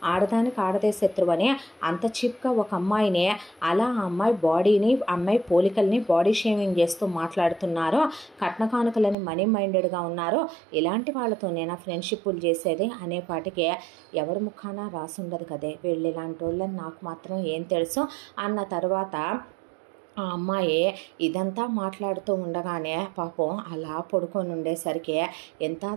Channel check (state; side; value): drops out; left; at 9.2 s